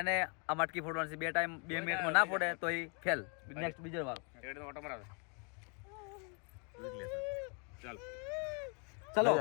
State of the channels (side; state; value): right; quieter; 37.2 dB